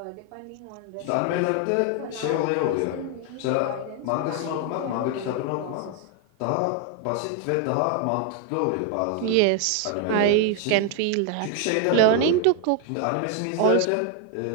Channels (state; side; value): different; both; correlation 0.00